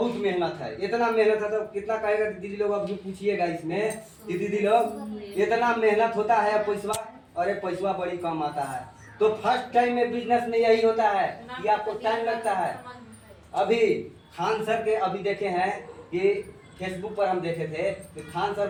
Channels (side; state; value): both; identical; correlation 1.00